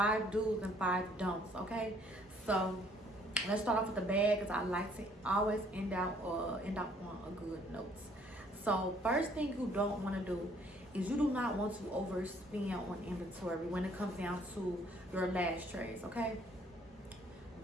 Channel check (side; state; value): both; normal; correlation 0.62